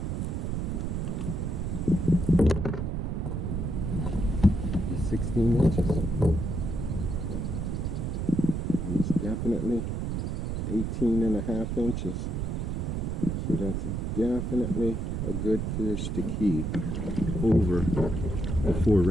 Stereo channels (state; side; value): noise; right; rumble, 1 dB below the sound